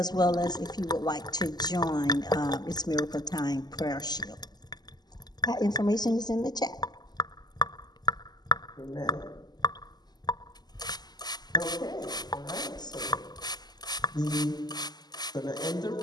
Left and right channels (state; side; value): late; right; 0.20 ms